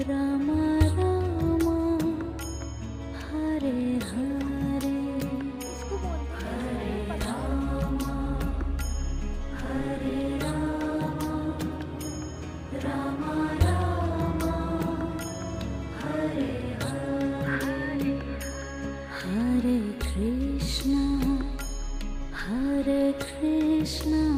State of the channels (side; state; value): both; identical; correlation 1.00